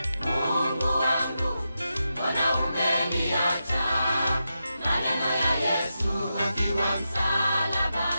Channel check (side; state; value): both; inverted; correlation -0.88